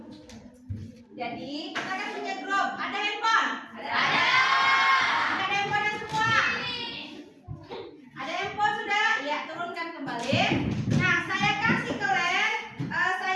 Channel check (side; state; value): both; identical; correlation 1.00